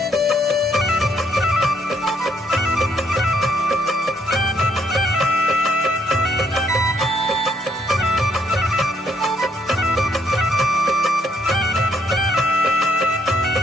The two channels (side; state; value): both; normal; correlation 0.70